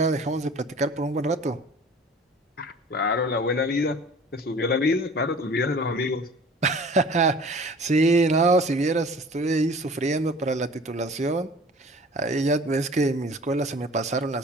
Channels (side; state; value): both; normal; correlation 0.46